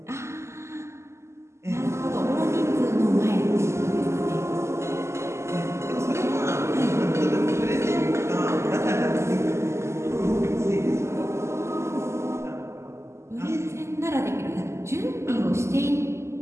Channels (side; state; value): left; late; 0.13 ms